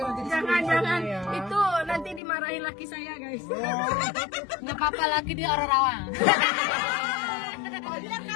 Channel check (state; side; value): drops out; right; at 2.2 s